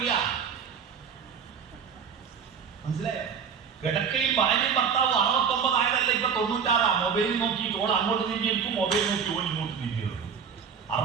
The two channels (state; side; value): quieter; left; 6.6 dB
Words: മനസ്സിലായോ? കിടക്കയിൽ ഭാര്യയും ഭർത്താവ് 69 ആയതല്ല, ഇപ്പൊ 96. മൊബൈൽ നോക്കി ഓൾ അങ്ങോട്ട് നീങ്ങിയിരിക്കും, മൊബൈൽ നോക്കി ഓൾ ഇങ്ങോട്ട് നീങ്ങിയിരിക്കും.